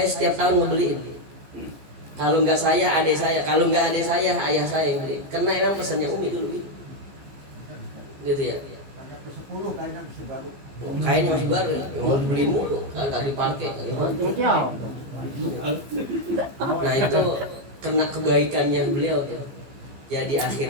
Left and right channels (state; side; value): late; left; 15 ms